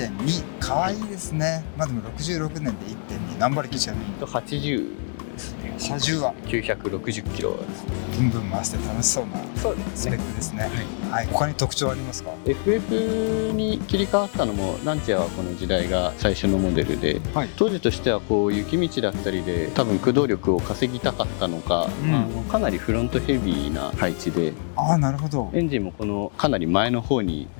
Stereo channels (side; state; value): right; silent; 62 dB below the other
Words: 可愛いですね。でも66年で1.2、何馬力ちなみに80ですね。車重は960キロです。ブンブン回して楽しそうなそうですね。スペックですね。はい。他に特徴ありますか？ FF に切り替わったのもランチャーはこの時代が最初のモデルで、はい、当時としてはこう雪道だったりで多分駆動力を稼ぎたかったのか、かなりフロントヘビーな配置で、なるほど。エンジンもこのかなり前の方に